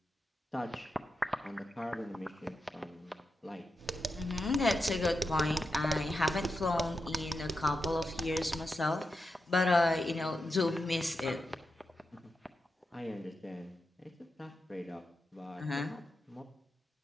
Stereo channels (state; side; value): normal; both; correlation 0.88